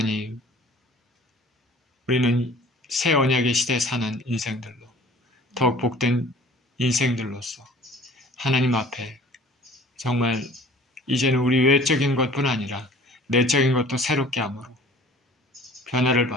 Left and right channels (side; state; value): both; normal; correlation 0.49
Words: 우리는 새 언약의 시대에 사는 인생들로 더욱 복된 인생들로서 하나님 앞에 정말 이제는 우리 외적인 것뿐 아니라 내적인 것도 새롭게 함으로 변화를